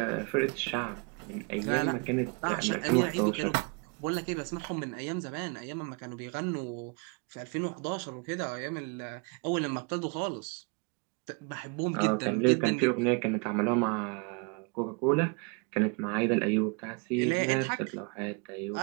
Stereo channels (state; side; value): quieter; left; 33.5 dB